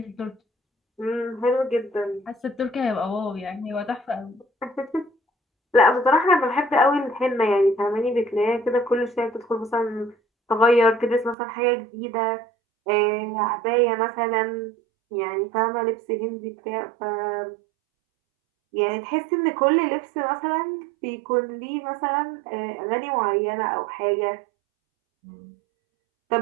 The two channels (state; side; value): drops out; left; at 11.4 s